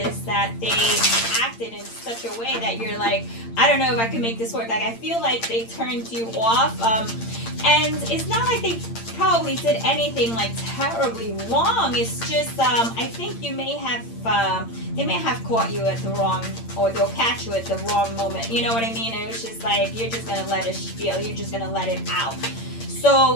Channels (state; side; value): late; right; 8.8 ms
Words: that they acted in such a way that you're like, I don't know if I can make this work. Like I feel like they turned you off. And it's not like they probably did anything like terribly wrong. It's just I think you may have they may have caught you at the wrong, or they'll catch you at the wrong moment. You know what I mean? And it was just like you're just gonna let it feel. You're just gonna let it out.